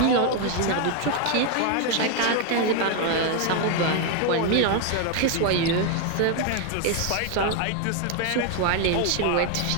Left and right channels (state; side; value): different; both; correlation 0.01